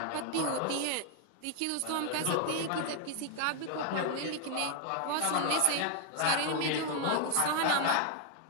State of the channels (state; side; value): different; both; correlation 0.00